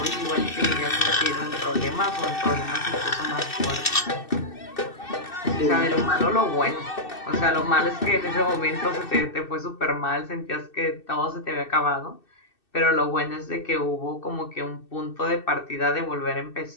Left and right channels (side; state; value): right; late; 2.6 ms